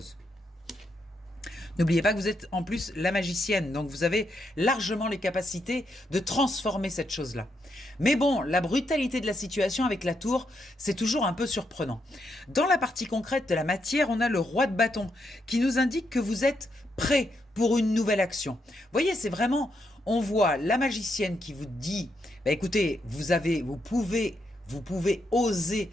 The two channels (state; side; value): normal; both; correlation 0.80